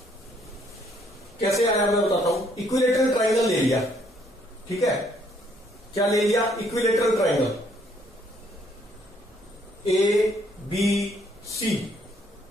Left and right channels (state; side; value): normal; both; correlation 0.66